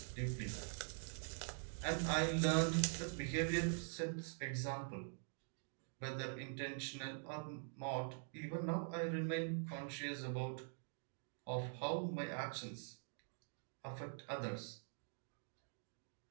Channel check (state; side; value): silent; left; digital silence